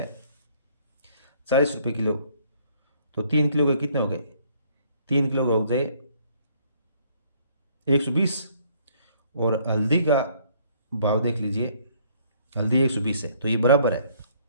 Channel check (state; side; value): inverted; both; correlation -0.62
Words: 40 रुपये किलो, तो 3 किलो के कितने हो गए, 3 किलो का हो जाए 120। और हल्दी का भाव देख लीजिए, हल्दी 120 है, तो ये बराबर है,